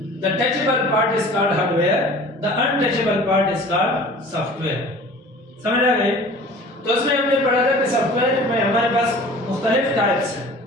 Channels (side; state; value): both; normal; correlation 0.44